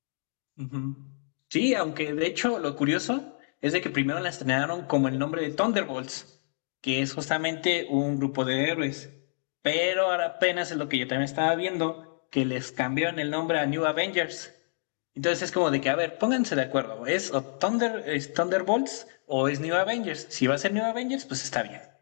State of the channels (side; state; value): right; silent; digital silence